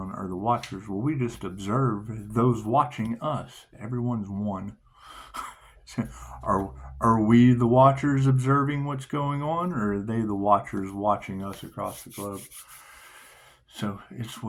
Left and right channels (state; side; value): identical; both; correlation 1.00